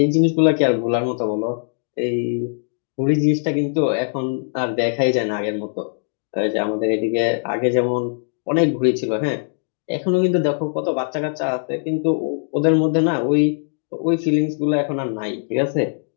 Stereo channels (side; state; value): right; silent; digital silence